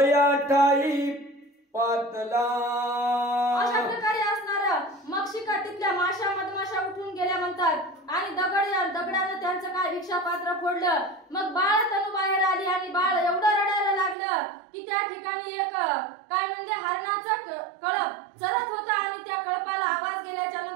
ठाई पातला. अशा प्रकारे असणार मक्षिका तिथल्या मधमाशा उठून गेल्या म्हणतात आणि दगडानं त्यांचं काय भिक्षा पात्र फोडलं. मग बाळ तनू बाहेर आली आणि बाळ एवढं रडायला लागलं की त्या ठिकाणी एक काय म्हणजे हरणाचा कळप चरत होता आणि त्या कळपाला आवाज गेल्याच्या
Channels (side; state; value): left; drops out; at 14.2 s